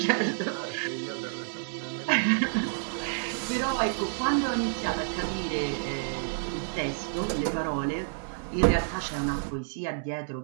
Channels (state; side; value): silent; left; digital silence